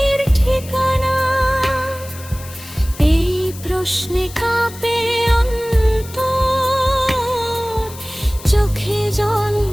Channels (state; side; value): noise; left; hiss, 17 dB below the sound